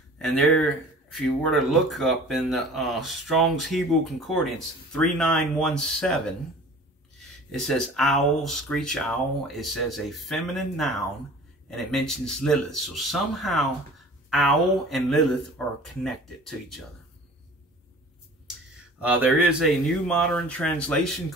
And there, if you were to look up in the Strong's Hebrew Concordance 3917, it says owl, screech owl. It says a feminine noun, and it mentions Lilith. So somehow owl and Lilith are connected to each other. There is a new modern translation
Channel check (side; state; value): both; normal; correlation 0.44